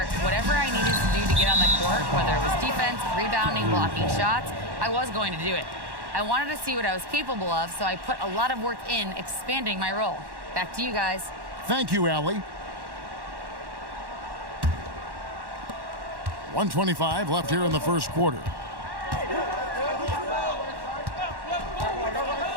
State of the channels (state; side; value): late; left; 1.1 ms